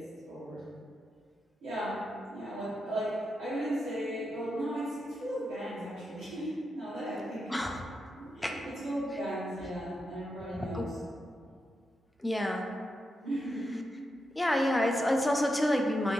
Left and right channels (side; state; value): both; normal; correlation 0.86